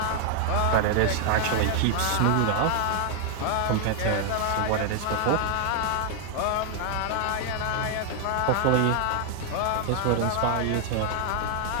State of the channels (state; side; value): different; both; correlation 0.00